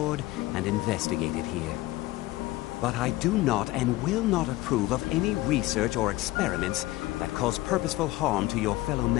and investigated here. But I do not and will not approve of any research or experiments that cause purposeful harm to your fellow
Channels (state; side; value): quieter; right; 18.0 dB